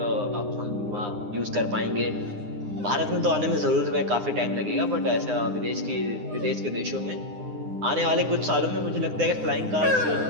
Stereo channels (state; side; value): late; left; 9.8 ms